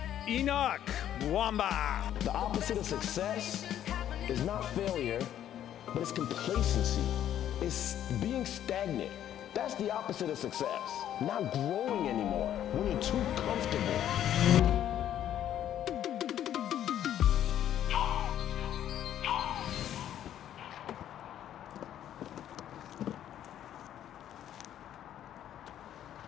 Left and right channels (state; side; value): quieter; right; 11.0 dB